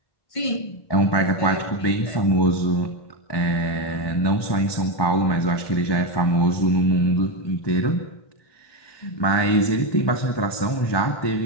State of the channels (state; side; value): late; right; 1.2 ms